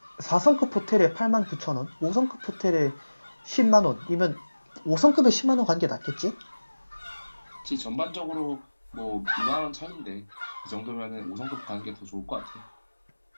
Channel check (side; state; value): both; inverted; correlation -1.00